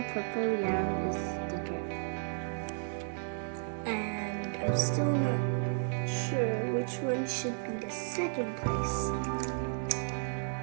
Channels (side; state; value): left; silent; digital silence